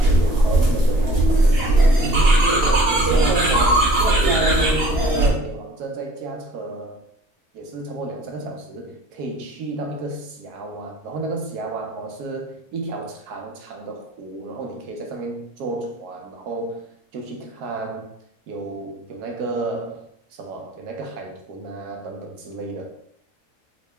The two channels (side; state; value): both; normal; correlation 0.51